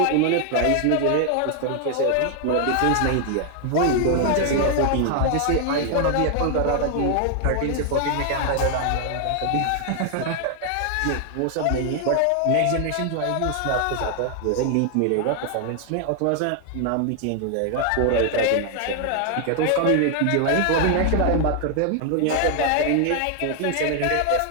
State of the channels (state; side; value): different; both; correlation 0.00